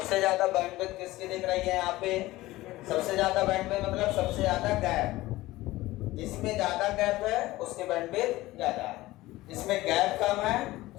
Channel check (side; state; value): right; quieter; 18.0 dB